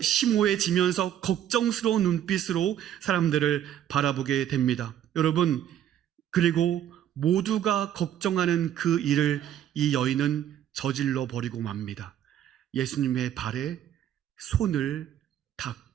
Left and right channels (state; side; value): quieter; left; 10.7 dB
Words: 심오해지면서 걱정스러운 눈빛으로 사람들을 바라보게 됩니다. 여러분, 그리고 모두가 걱정하는 그 일을 이 여인은 저질러 버리고 맙니다. 예수님의 발에 손을